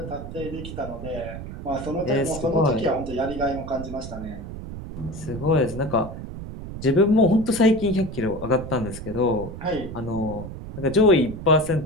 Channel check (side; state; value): right; noise; rumble, 10 dB below the sound